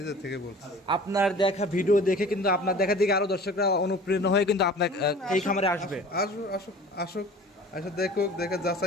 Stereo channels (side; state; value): both; normal; correlation 0.43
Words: থেকে বলছি। আপনার দেখা ভিডিও দেখে কিন্তু আপনার দেখা দেখে আরো দর্শকরা অনুপ্রেরণা হয়ে কিন্তু আপনার এই খামারে আসবে। আসুক আসুক আসুক, এসে দেখুক, দেখে